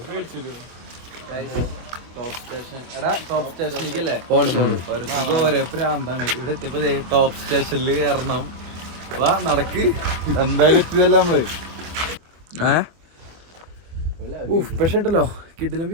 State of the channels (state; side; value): late; left; 24 ms